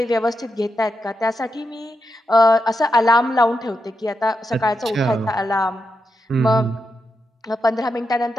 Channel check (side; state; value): both; normal; correlation 0.86